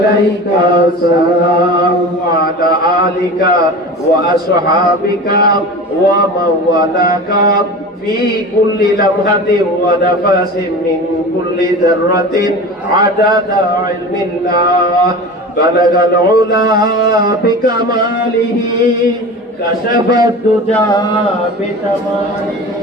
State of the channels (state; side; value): normal; both; correlation 0.33